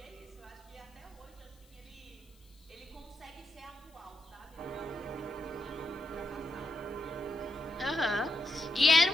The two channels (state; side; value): noise; left; hiss, 29 dB below the sound